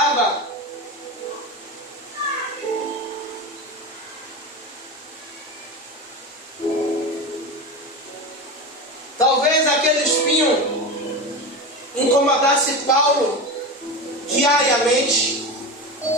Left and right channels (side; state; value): both; normal; correlation 0.23